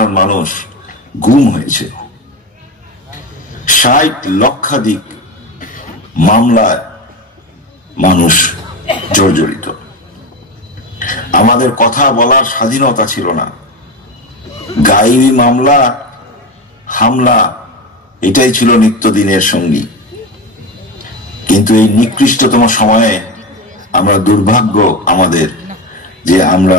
মানুষ গুম হয়েছে। 60 লক্ষাধিক মামলায় মানুষ জর্জরিত। আমাদের কথা বলার স্বাধীনতা ছিল না। গায়েবী মামলা, হামলা, এটাই ছিল নিত্যদিনের সঙ্গী। কিন্তু এই নিকৃষ্টতম সময়ে আমরা দুর্ভাগ্য আমাদের যে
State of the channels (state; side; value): normal; both; correlation 0.21